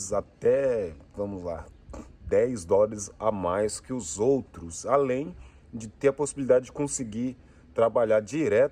até, vamos lá, 10 dólares a mais que os outros, além de ter a possibilidade de conseguir trabalhar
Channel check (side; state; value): both; identical; correlation 1.00